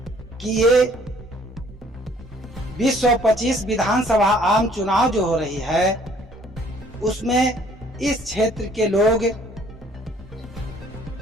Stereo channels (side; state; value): both; normal; correlation 0.59